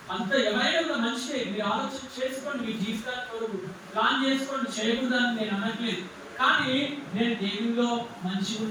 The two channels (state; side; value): identical; both; correlation 1.00